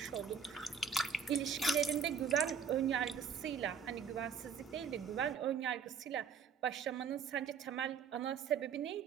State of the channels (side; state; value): left; quieter; 6.7 dB